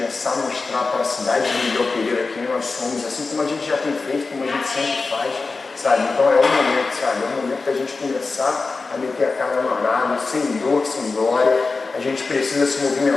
a mostrar para a cidade de Miguel Pereira quem nós somos, assim como a gente já tem feito, como a gente sempre faz, sabe? Então é o momento, sabe? É o momento da gente começar a meter a cara no arado, sem dor, sem glória. A gente precisa se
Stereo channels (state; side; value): quieter; right; 4.0 dB